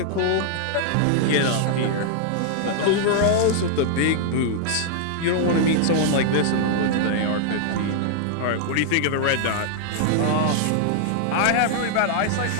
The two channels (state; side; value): different; both; correlation -0.01